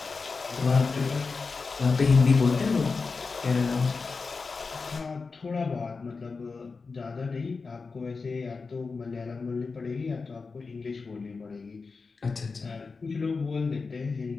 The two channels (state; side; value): quieter; right; 4.5 dB